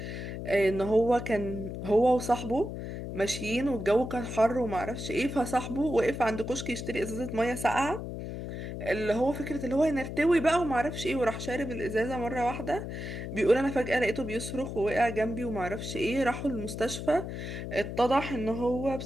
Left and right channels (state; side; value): noise; left; hum, 7 dB below the sound